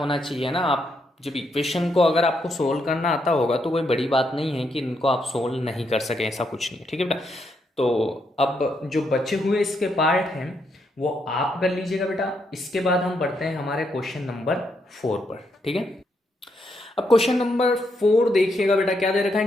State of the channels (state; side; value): normal; both; correlation 0.78